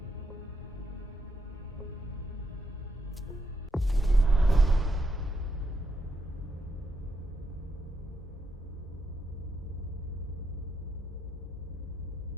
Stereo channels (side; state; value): both; normal; correlation 0.80